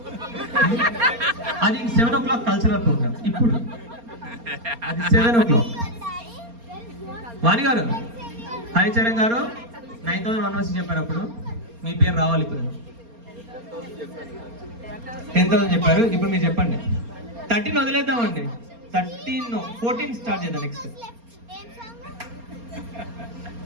అది 7 o'clock కల్చరల్ ప్రోగ్రామ్. ఇప్పుడు అది 7 o'clock. వాణి గారు హరిచరణ్ గారు 9,116 చెప్పారు. అప్పుడు మీ పేరు రావాలి. ఇప్పుడు 10,000 చెప్పారు. ఇప్పుడు మీరు చెప్పండి. 13 వదిలేద్దామండి. 14 స్టార్ట్ చేద్దాం. నెక్స్ట్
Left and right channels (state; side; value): late; left; 4.3 ms